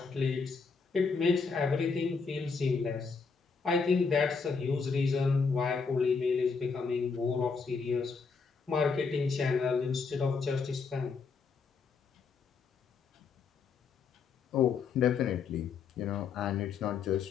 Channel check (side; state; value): right; quieter; 5.2 dB